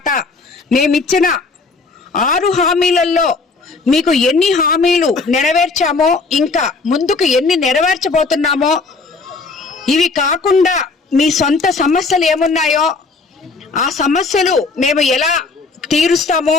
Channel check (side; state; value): right; quieter; 4.1 dB